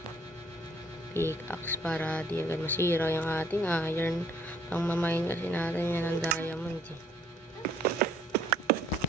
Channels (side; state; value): both; normal; correlation 0.61